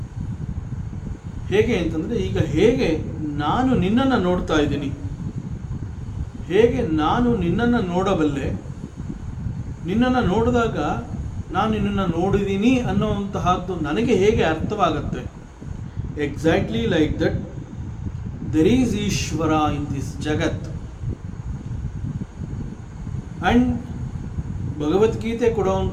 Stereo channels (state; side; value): identical; both; correlation 1.00